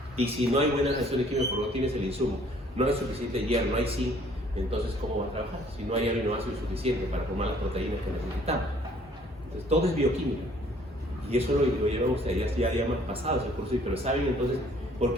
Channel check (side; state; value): both; normal; correlation 0.59